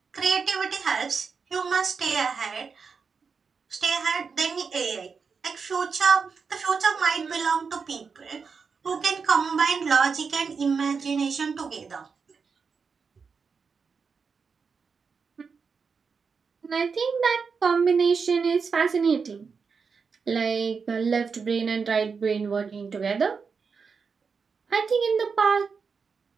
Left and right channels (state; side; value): quieter; left; 5.4 dB